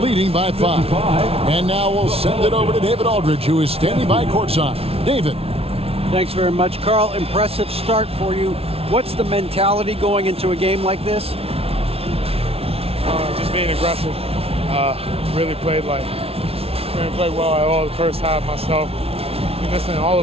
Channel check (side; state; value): left; late; 0.29 ms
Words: leading by 5. And now we'll send it over to David Aldridge, who is standing by courtside. David. Thanks very much, Carl. Impressive start for you. What's the mentality going into a game like this? Just being aggressive. Really played well at all the first half myself. All